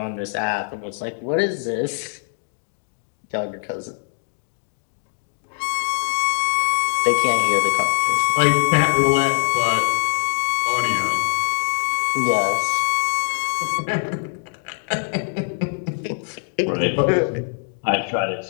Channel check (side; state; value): right; silent; 57 dB below the other